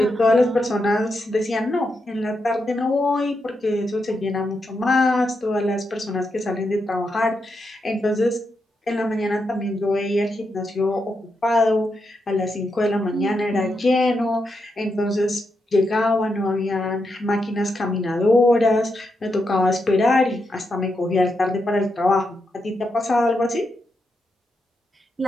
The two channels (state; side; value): normal; both; correlation 0.84